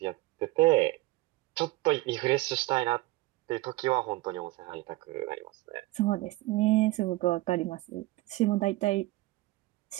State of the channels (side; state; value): left; quieter; 19.5 dB